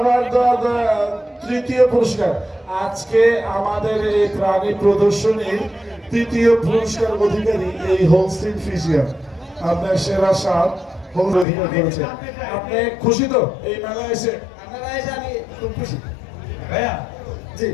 তৃতীয় পুরস্কার। আজকে আমাদের এই প্রাণী প্রদর্শনীর তৃতীয় পুরস্কার অধিকারী এই হোলস্টিন ফ্রিজিয়ান। আপনার সেরা সার হোম অধিকার করেছেন। আপনি খুশি তো এই মেলায় এসে? আমি খুব খুশি ভাইয়া। জি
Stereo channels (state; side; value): drops out; right; at 11.5 s